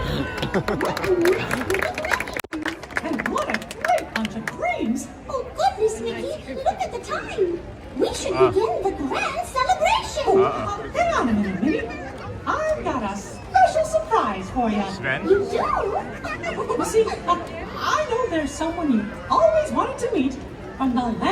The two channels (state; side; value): identical; both; correlation 1.00